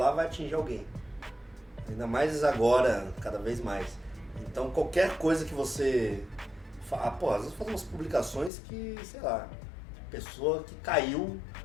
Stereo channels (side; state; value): right; drops out; at 8.5 s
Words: vai atingir alguém. Ainda mais agora, cada vez mais. Então qualquer coisa que você... às vezes faz umas publicações que, sei lá, pessoa que caiu...